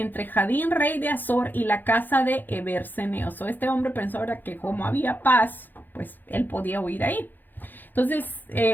Jadín, rey de Azor, y la casa de Eber, Ceneo. Este hombre pensó, ¿verdad?, que como había paz, pues él podía huir ahí. Entonces,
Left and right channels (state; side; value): late; right; 0.088 ms